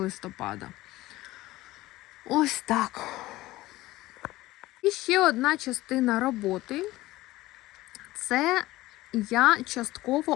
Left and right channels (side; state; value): right; quieter; 17.7 dB